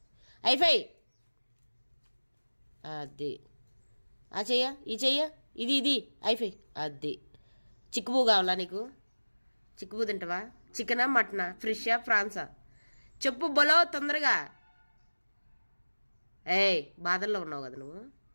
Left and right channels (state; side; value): inverted; both; correlation -1.00